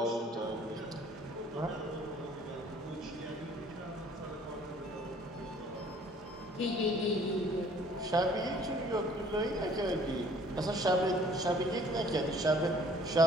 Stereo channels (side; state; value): both; normal; correlation 0.55